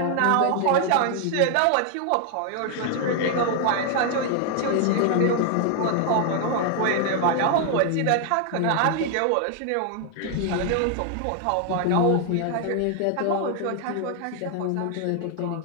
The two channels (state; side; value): different; both; correlation 0.00